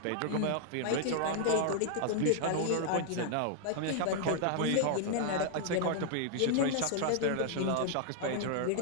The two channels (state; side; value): different; both; correlation -0.01